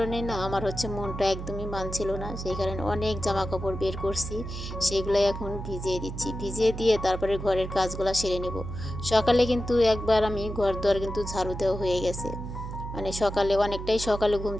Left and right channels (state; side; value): noise; right; hum, 7 dB below the sound